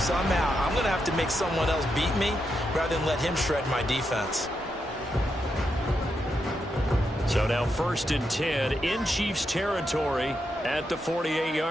I'm going to have to make someone else beat me rather than let him shred my defense. So now 1st and 10 in Chiefs territory at the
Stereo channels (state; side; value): normal; both; correlation 0.84